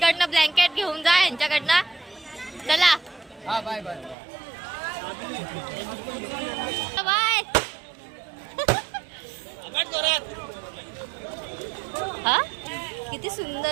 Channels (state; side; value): drops out; left; at 4.2 s